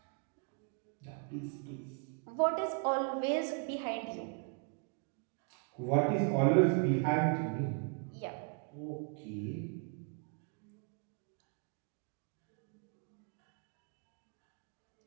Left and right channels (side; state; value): left; quieter; 38.7 dB